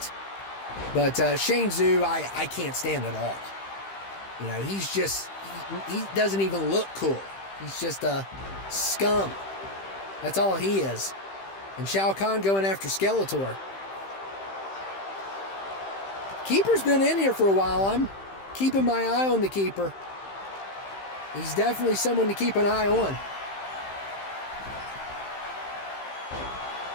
But Shang Tzu, I can't stand at all. You know, he's just, he doesn't even look cool. He's just a scum. That's all he is. And Shao Kahn going after Skeletor. Keeper's been in here for a while. I'm keeping my eye on the Keeper. He's definitely someone to keep an eye on.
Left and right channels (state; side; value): late; right; 15 ms